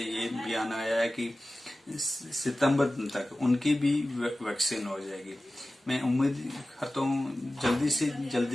बयान आया है कि सितंबर तक उनकी भी वैक्सीन हो जाएगी। मैं उम्मीद करता हूँ जल्दी से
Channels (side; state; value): both; normal; correlation 0.96